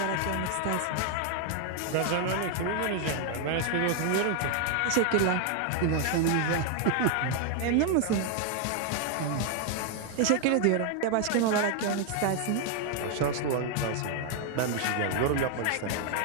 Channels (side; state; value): both; different; correlation 0.00